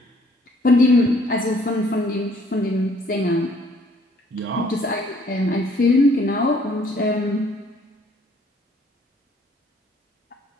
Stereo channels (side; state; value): both; normal; correlation 0.61